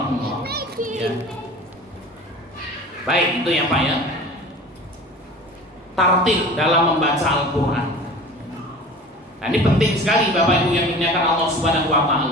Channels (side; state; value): both; normal; correlation 0.40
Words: Ya. Baik, itu ya Pak ya. Tartil dalam membaca Al-Quran. Nah, ini penting sekali Bapak Ibu yang dimuliakan Allah Subhanahu wa